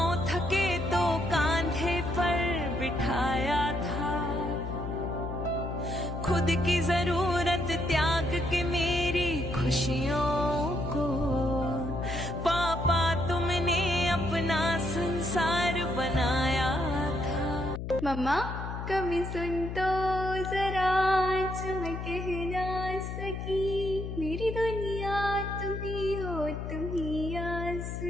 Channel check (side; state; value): left; noise; hum, 6 dB below the sound